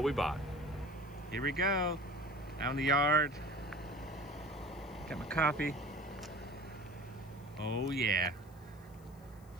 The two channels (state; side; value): noise; left; hiss, 28 dB below the sound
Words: we bought. Here we go, out in the yard. Got my coffee. Oh yeah,